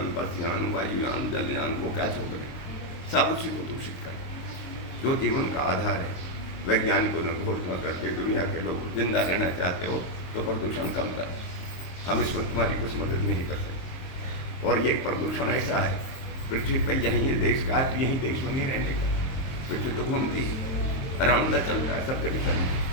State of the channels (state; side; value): late; right; 22 ms